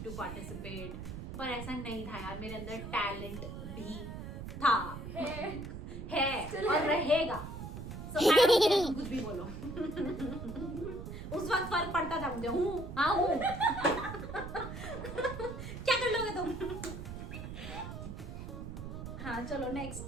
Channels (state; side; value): noise; right; rumble, 8 dB below the sound